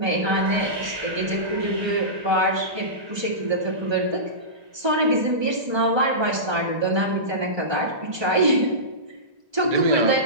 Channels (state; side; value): late; left; 1.3 ms